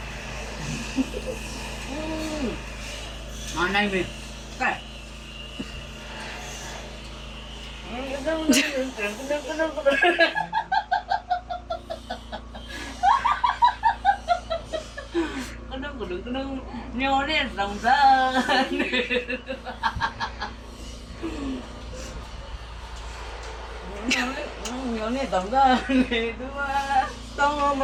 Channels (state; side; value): identical; both; correlation 1.00